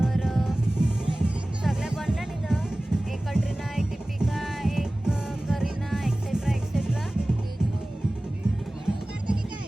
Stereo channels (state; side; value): normal; both; correlation 0.98